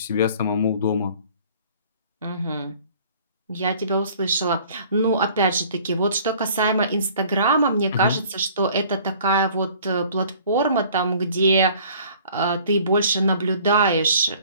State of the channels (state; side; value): inverted; both; correlation -0.53